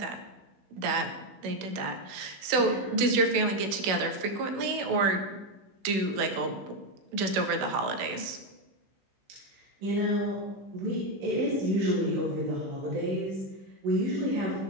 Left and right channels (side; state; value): left; late; 16 ms